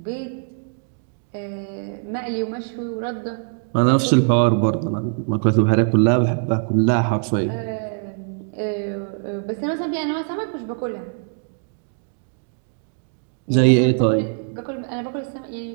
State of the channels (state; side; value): silent; left; 55 dB below the other